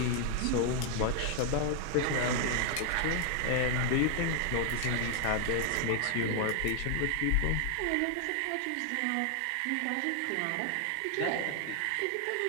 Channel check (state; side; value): different; both; correlation 0.00